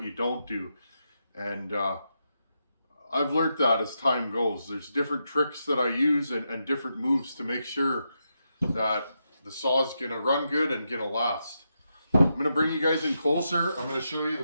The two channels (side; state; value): both; inverted; correlation -0.85